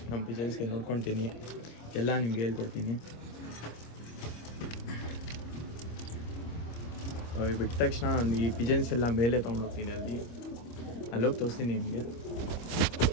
ನಮ್ಮ ಪಿಜನ್ಸ್ಗೆ ನೋಡ್ಕೊತೀನಿ ಎಲ್ಲ ನಿಮಗೆ ಹೇಳ್ಕೊಡ್ತೀನಿ. ಬಿಟ್ಟ ತಕ್ಷಣ ಈ ಪಿಜನ್ಸ್ ಎಲ್ಲ ಮೇಲೆ ತೊಗೊಂಡೋಗ್ತೀನಿ, ಅಲ್ಲೋಗಿ ತೋರಿಸ್ತೀನಿ ನಿಮಗೆ.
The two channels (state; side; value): late; right; 25 ms